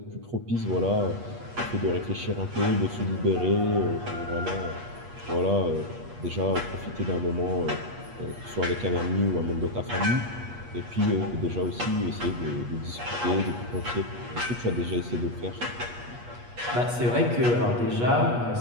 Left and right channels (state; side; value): late; left; 8.3 ms